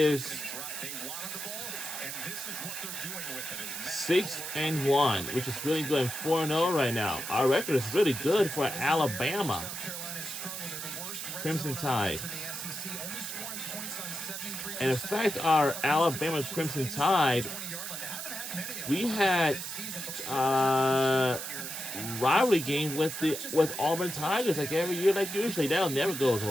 6-1, which is really good, and 4-0 right now. Our record is really good for Alabama. Crimson Tide. And in fact, our Alabama Crimson Tide, we had rivalry game with Auburn Tigers like every year, like usually. That never goes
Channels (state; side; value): noise; right; hiss, 6 dB below the sound